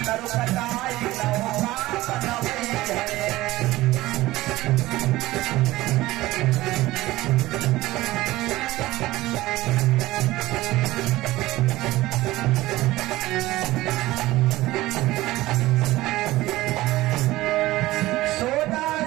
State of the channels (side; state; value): left; quieter; 17.7 dB